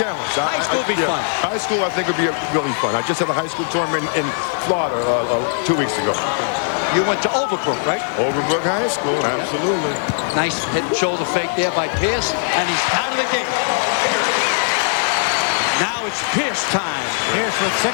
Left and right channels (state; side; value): silent; right; 66 dB below the other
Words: High school would be fun. High school, I think, would be really fun. I just had a high school tournament in Florida 2 weeks ago. You went to Overbrook, right? Overbrook High School, absolutely. Nice head and shoulder fake there by Pierce, and he's out of the game. Now it's Pierce time. Pierce with